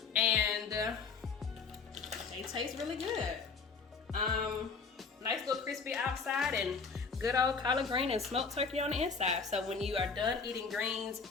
And they taste really good. Nice little crispy outside and good old collard green and smoked turkey on the inside. So when you are done eating greens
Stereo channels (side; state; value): right; quieter; 5.0 dB